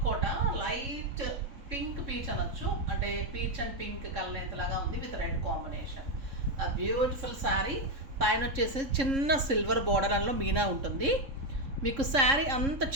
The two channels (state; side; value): late; left; 3.6 ms